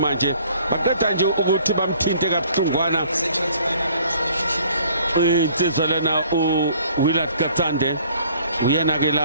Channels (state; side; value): inverted; both; correlation -0.57